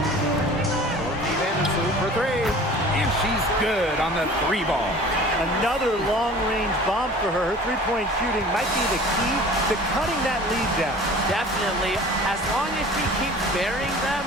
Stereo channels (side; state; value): both; normal; correlation 0.44